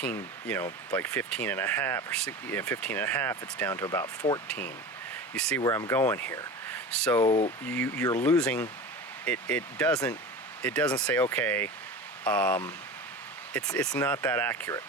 like 15 and a half, or 15 and a half, it's down to about 14. You see where I'm going here. So you're losing. It doesn't say, okay, it's not that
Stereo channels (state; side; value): normal; both; correlation 0.31